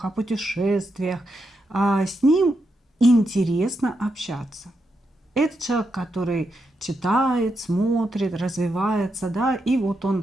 о путешествиях. С ним интересно общаться. Это человек, который читает, смотрит, развивается, да, и вот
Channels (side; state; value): both; normal; correlation 0.84